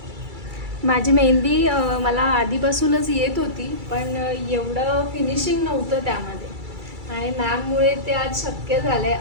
माझी मेहंदी मला आधीपासूनच येत होती, पण एवढं फिनिशिंग नव्हतं त्यामध्ये. आणि मॅममुळे ते आज शक्य झालं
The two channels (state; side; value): late; left; 2.3 ms